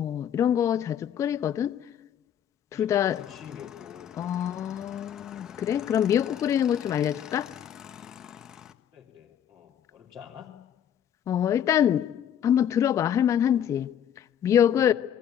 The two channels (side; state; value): right; quieter; 9.5 dB